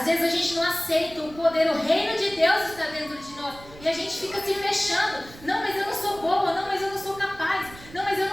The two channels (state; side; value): noise; right; rumble, 19 dB below the sound